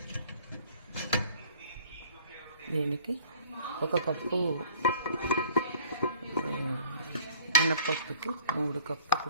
దీనికి 1 కప్పు మినపప్పుకి 3 కప్పులు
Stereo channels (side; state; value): both; inverted; correlation -0.52